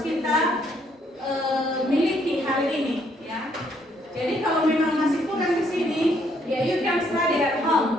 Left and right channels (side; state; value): both; normal; correlation 0.69